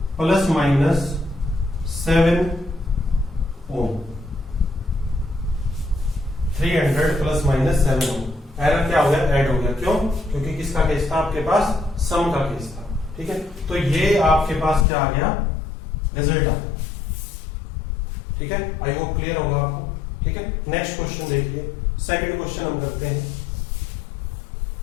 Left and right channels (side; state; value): right; drops out; at 14.9 s